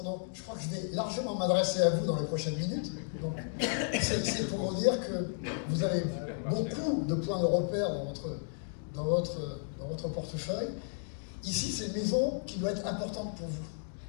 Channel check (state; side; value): silent; right; digital silence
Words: donc, je crois que je vais largement m'adresser à vous dans les prochaines minutes. C'est pour vous dire que vous avez beaucoup de points de repère dans votre portefeuille. Ici, c'est une maison qui doit être importante pour vous.